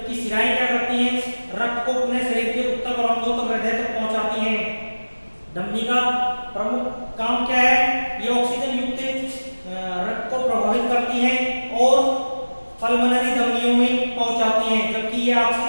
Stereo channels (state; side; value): inverted; both; correlation -1.00